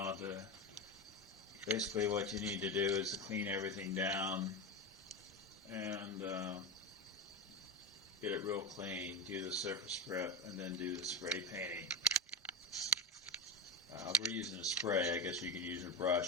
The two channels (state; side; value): normal; both; correlation 0.17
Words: to, basically what you need to do is to clean everything down and get it real clean, do the surface prep, and then do the spray painting. We're using a spray. I guess you could use a